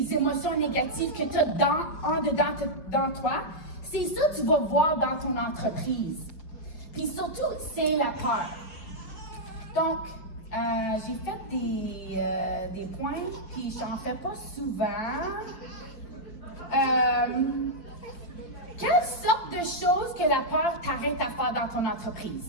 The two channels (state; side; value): late; right; 5.1 ms